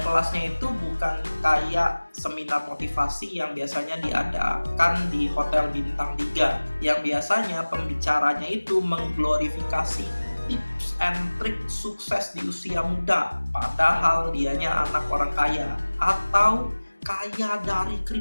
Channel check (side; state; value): both; inverted; correlation -1.00